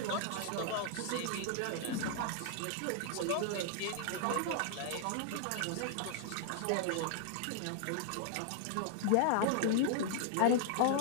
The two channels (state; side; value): different; both; correlation 0.00